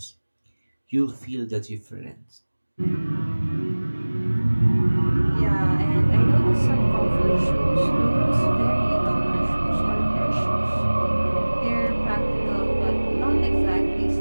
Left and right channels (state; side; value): inverted; both; correlation -1.00